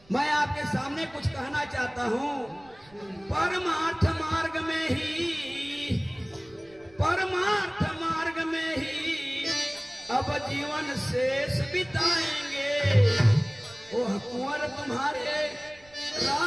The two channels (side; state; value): right; noise; rumble, 27 dB below the sound